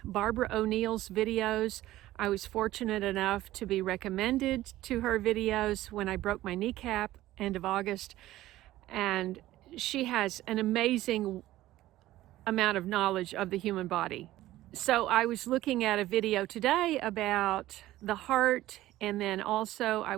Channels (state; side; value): quieter; left; 15.6 dB